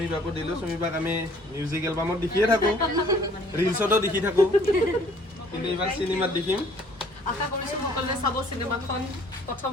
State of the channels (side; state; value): both; normal; correlation 0.57